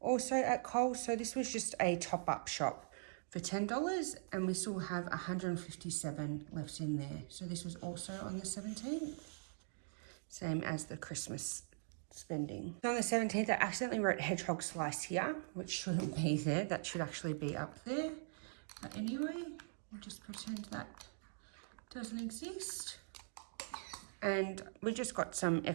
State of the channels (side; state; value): left; silent; digital silence